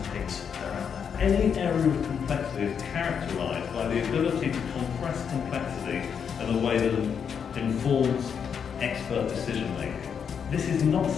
the pigs that are out there. Any area of complexity is characterised by the ability to compress complexity in a way that informs expert decision making. This is not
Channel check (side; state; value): right; quieter; 7.2 dB